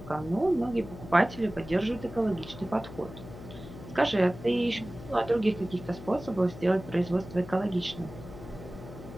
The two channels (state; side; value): noise; left; hum, 14 dB below the sound